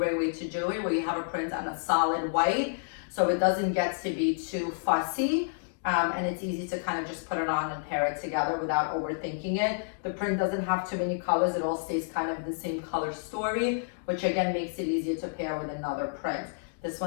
way to do it, where you have a print on a solid white, so it doesn't get to be too fussy, and it's easy to kind of just put it on and pair it together without overthinking it. The print doesn't have too many colors. It all stays kind of the same color story, which again makes it easier to pair with another print. This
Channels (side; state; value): right; silent; digital silence